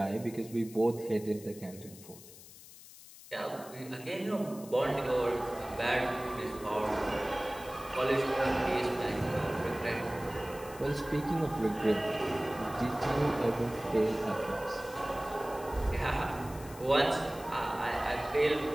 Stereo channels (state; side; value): noise; left; hiss, 18 dB below the sound